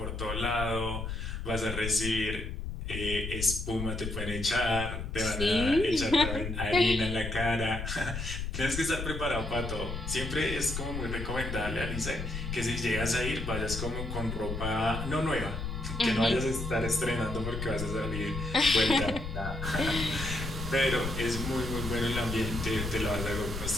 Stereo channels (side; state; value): left; noise; rumble, 5 dB below the sound